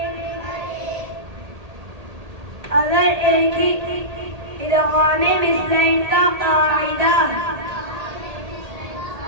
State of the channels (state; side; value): late; left; 1.8 ms